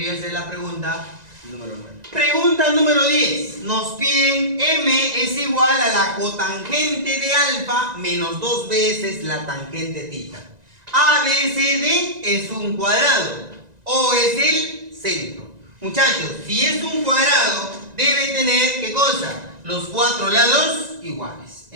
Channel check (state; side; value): late; left; 1.9 ms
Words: a ser la pregunta número 9. Pregunta número 10. Nos piden M es igual a la cotangente de alfa menos 2 veces la tangente tita. ABCD es un cuadrado. O es el centro. Muchachos, si es un cuadrado, debe tener, ¿qué cosa? Los cuatro lados iguales.